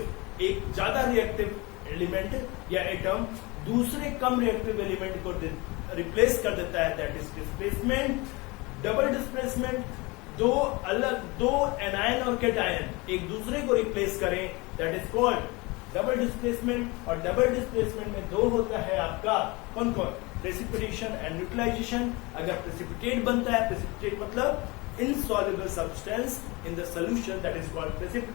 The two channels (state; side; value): quieter; right; 24.9 dB